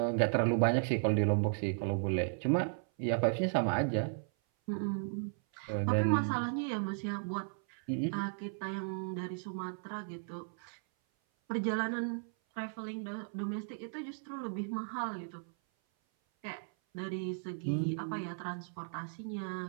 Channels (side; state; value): left; silent; 54 dB below the other